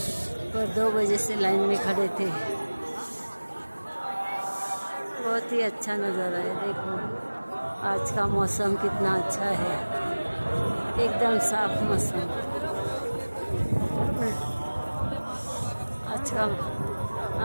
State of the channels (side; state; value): both; inverted; correlation -1.00